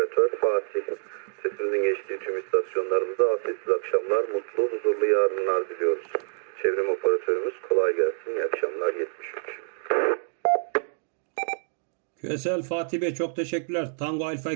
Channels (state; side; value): silent; left; digital silence